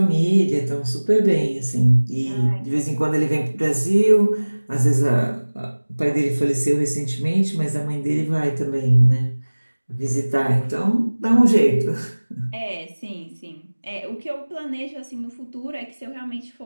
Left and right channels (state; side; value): inverted; both; correlation -1.00